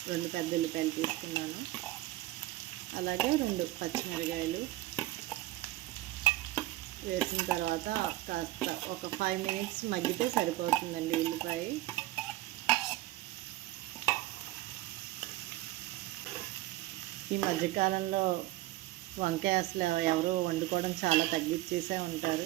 2 పెద్ద ఉల్లిపాయలు తీసుకున్నాను. అలాగే 2 పచ్చిమిరకాయలు వేసిన తర్వాత కాస్త ఒక 5 మినిట్స్ మగ్గితే సరిపోతుందండి ఉల్లిపాయ. ఈ మధ్యకాలంలో వంకాయ అసలు ఎవరో వండుకోవడం చాలా తగ్గించేసే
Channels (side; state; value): left; quieter; 17.1 dB